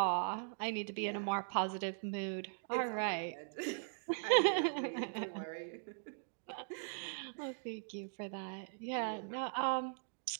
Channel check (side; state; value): left; silent; digital silence